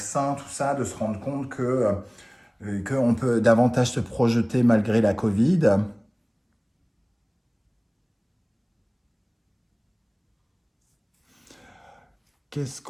tout ça, de se rendre compte qu'on peut davantage se projeter malgré la Covid. Qu'est-ce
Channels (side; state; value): both; identical; correlation 1.00